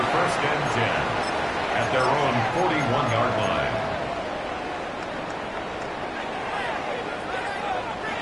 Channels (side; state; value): both; identical; correlation 1.00